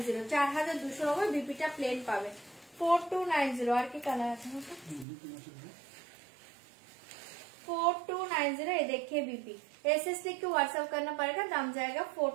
4290 বিপিটা প্লেন পাবে 4290। আর কি কালার আছে 4290 ये देखिए बीपी एसएस लिख के व्हाट्सएप करना पड़ेगा, दाम जाएगा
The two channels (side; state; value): left; drops out; at 5.1 s